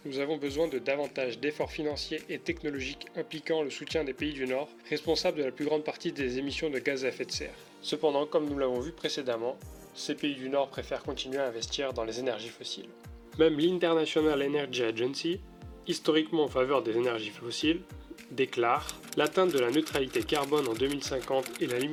nous avons besoin de davantage d'efforts financiers et technologiques impliquant le soutien des pays du Nord, responsables de la plus grande partie des émissions de gaz à effet de serre. Cependant, comme nous l'avons vu précédemment, ces pays du Nord préfèrent continuer à investir dans les énergies fossiles. Même l'International Energy Agency, historiquement en faveur des énergies fossiles, déclare l'atteinte de la neutralité carbone en 2050 et la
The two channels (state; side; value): identical; both; correlation 1.00